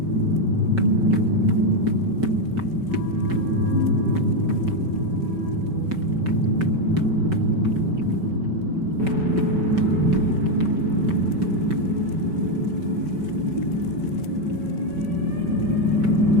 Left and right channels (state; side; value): late; left; 5.2 ms